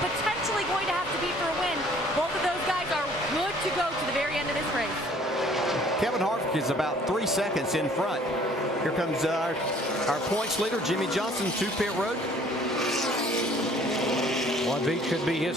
going to have to beat for a win. Both of those guys are good to go to the very end of this race. Kevin Harvick is about 3 seconds in front. Here comes our points leader, Jimmy Johnson, to pit road. One beat could be his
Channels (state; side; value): normal; both; correlation 0.56